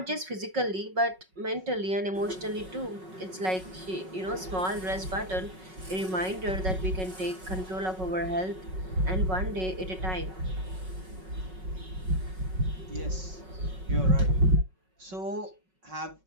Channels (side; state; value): left; late; 5.4 ms